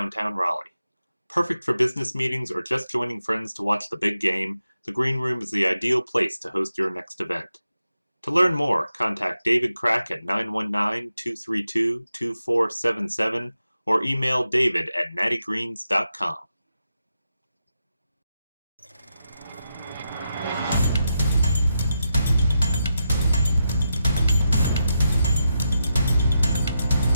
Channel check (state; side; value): inverted; both; correlation -0.87